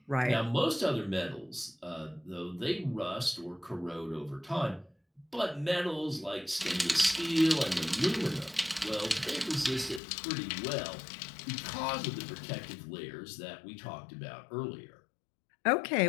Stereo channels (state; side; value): drops out; right; at 10.0 s